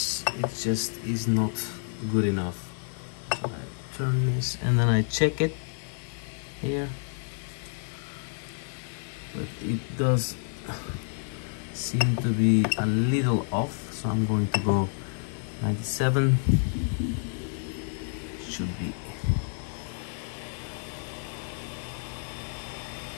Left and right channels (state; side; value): silent; right; 58 dB below the other